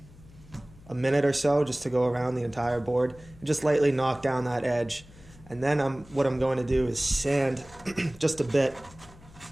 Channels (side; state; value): left; noise; hum, 23 dB below the sound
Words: a minute or so just to go around the entire board and just lightly knock down that edge. And then what I'm going to do is sand just a bit